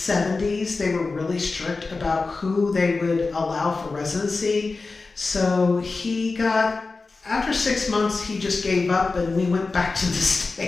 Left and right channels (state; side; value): quieter; right; 3.9 dB